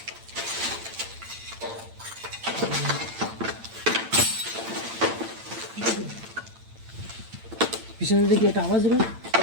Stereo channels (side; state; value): left; late; 8.9 ms